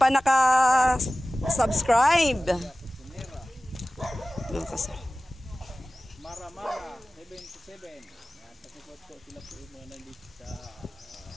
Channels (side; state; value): both; normal; correlation 0.97